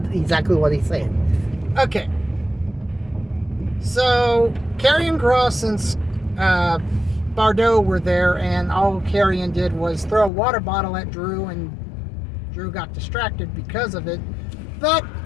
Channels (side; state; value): right; drops out; at 10.3 s